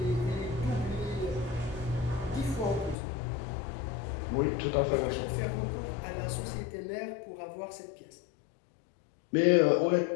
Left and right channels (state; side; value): drops out; right; at 3.0 s